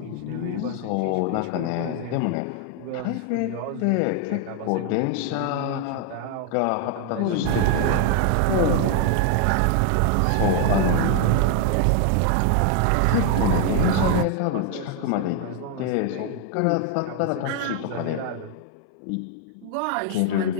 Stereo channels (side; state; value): both; different; correlation 0.01